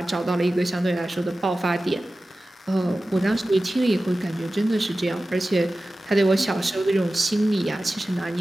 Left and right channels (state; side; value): normal; both; correlation 0.95